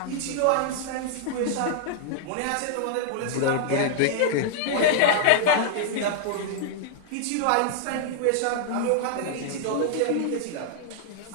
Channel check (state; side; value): different; both; correlation -0.01